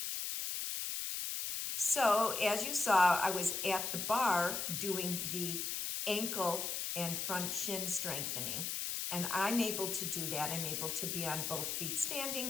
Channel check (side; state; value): left; noise; hiss, 2 dB below the sound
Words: So, as you saw, I was at the bar doing the ankle and front shin strengthening. And I'm able to do that. I'm able to be on both feet